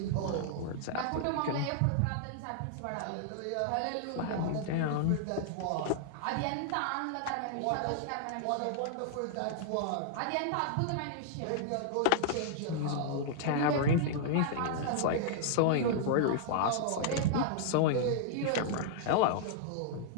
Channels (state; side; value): different; both; correlation -0.01